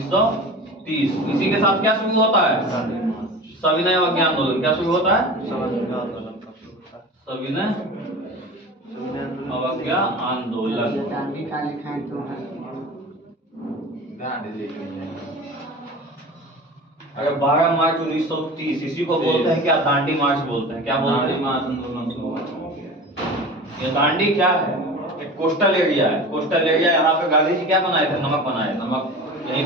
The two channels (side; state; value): both; normal; correlation 0.35